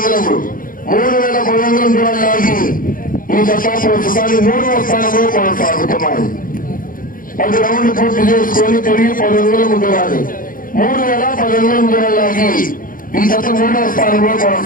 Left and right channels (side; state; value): right; late; 0.40 ms